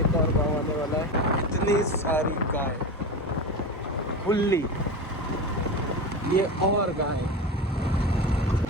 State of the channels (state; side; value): normal; both; correlation 0.24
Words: एक और गांव आने वाला है। इतनी सारी गाय खुली, ये और गाय,